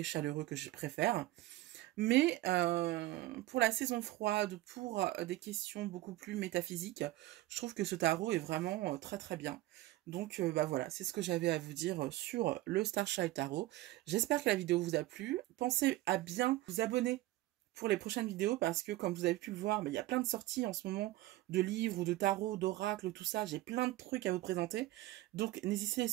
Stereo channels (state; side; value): quieter; left; 17.1 dB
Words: chaleureux que je préfère. Mais pour la saison froide, pour des questions beaucoup plus métaphysiques, je trouve que ce tarot est vraiment très très bien. Donc bah voilà, c'est ce que j'avais à vous dire sur le Starchild Tarot. J'espère que la vidéo vous a plu. Pensez à bien vous abonner pour les prochaines vidéos parce que comme vous avez pu le voir, il y a plein de sorties en ce moment de livres ou de tarot, d'oracles, tout ça. J'ai plein de trucs à vous présenter. Donc n'hésitez